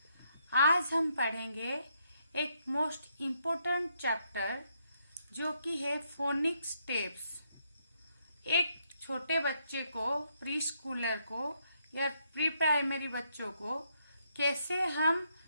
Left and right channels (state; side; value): inverted; both; correlation -0.76